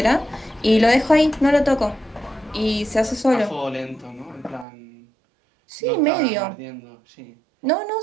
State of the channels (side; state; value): left; drops out; at 4.7 s